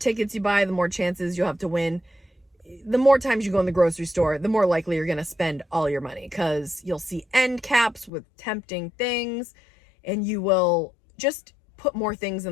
you buy, the more chances you'll have to win. The more times you go in the grocery store, the more likely you're going to spend all your money because you'll see end caps with tempting things and you will just put more things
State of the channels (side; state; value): right; drops out; at 8.1 s